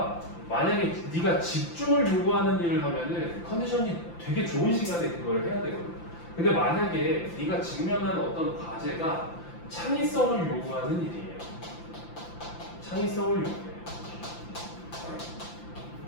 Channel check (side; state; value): right; late; 5.8 ms